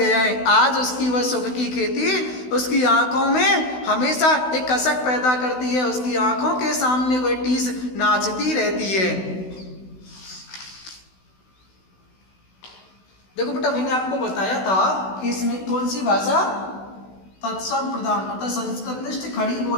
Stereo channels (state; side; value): late; right; 16 ms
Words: है। आज उसकी वह सुख की खेती उसकी आंखों में हमेशा एक कसक पैदा करती है, उसकी आंखों के सामने वह टीस नाचती रहती है। देखो बेटा, मैंने आपको बताया था कि इसमें कौन सी भाषा तत्सम प्रधान अर्थात संस्कृतनिष्ठ खड़ी